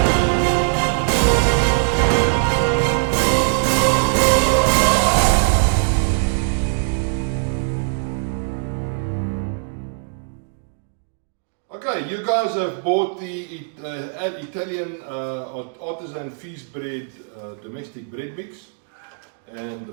Okay, you guys have bought the Italian Artisan feast bread domestic bread mix and the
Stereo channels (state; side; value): silent; left; digital silence